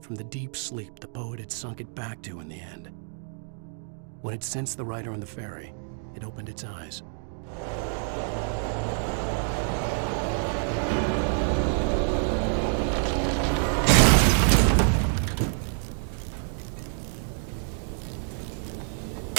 from the deep sleep the poet had sunk it back to in the end. When it sensed the writer on the ferry, it opened its eyes.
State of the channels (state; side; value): silent; left; 60 dB below the other